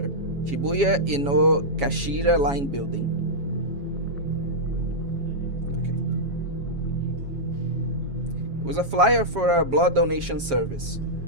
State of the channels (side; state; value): left; late; 7.3 ms